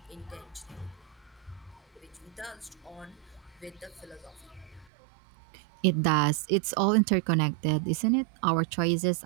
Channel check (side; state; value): left; drops out; at 4.9 s